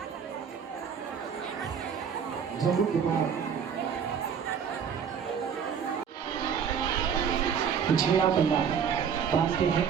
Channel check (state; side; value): quieter; left; 7.3 dB